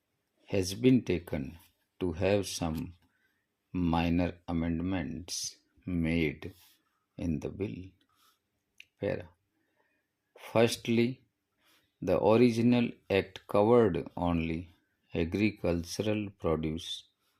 taken to have some minor amendments made in the bill. Firstly, the original act covered only agricultural produce,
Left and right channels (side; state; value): both; identical; correlation 1.00